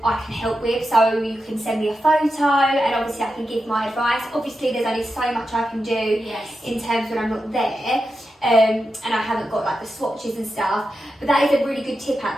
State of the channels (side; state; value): both; normal; correlation 0.89